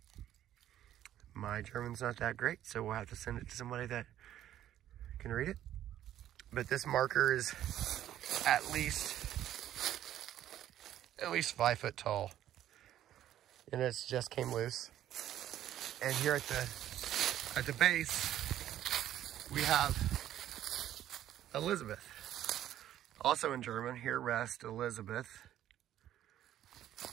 My German's not that great, so we'll have to send it to somebody that can read it. But this marker is at least 5 foot tall, and it's just came loose. And here at the base, we have Elizabeth. Also in German, here rest Elizabeth.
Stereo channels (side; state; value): left; quieter; 12.0 dB